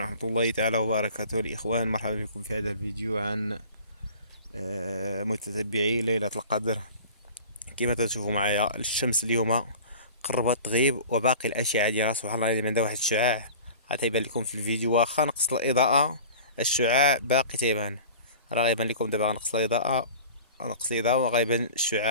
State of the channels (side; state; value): both; inverted; correlation -0.41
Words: الله تعالى وبركاته الإخوان، مرحبا بكم في هذا الفيديو عن متتبعي ليلة القدر. كما تشوفوا معايا الشمس اليوم قربت تغيب وباقي الأشعة ديالها سبحان الله عندها واحد الشعاع غتيبان لكم في الفيديو. واخا نقص الإضاءة الشعاع باقي تيبان، راه غيبان لكم دابا. غنقص الإضاءة وغيبان